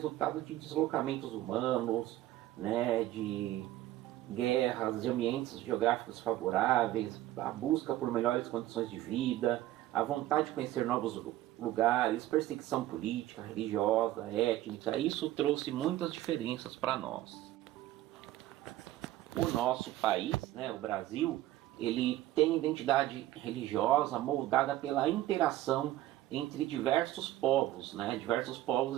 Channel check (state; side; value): quieter; left; 14.9 dB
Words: de deslocamentos humanos, né? De guerras, de ambientes geográficos favoráveis, a busca por melhores condições de vida, a vontade de conhecer novos lugares, perseguição política, religiosa, étnica. Isso trouxe muitas diferenças para nós. O nosso país, né, o Brasil, ele tem identidade religiosa moldada pela interação entre diversos povos, né, diversos